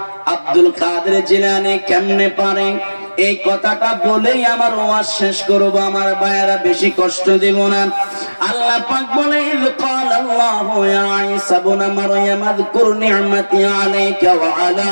আব্দুল কাদের জিলানী কেমনে পারে? এই কথাটা বলেই আমার ওয়াজ শেষ করব। আমার ভাইয়েরা বেশি কষ্ট দেব না। আল্লাহ পাক বলে, ইয ক্বালাল্লাহু ইয়া ঈসা ইবনে মারইয়াম আযকুর নি'মাতি আলাইকা ওয়া আলা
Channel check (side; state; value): both; inverted; correlation -1.00